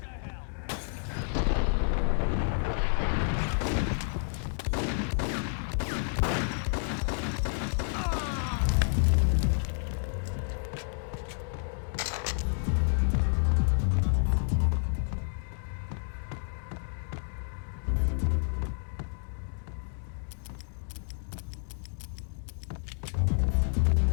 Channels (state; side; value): silent; right; 58 dB below the other